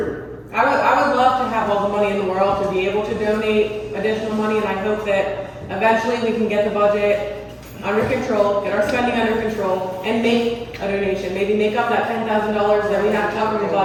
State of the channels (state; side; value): identical; both; correlation 1.00